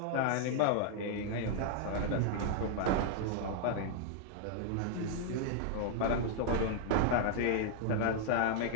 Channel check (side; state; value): both; different; correlation -0.01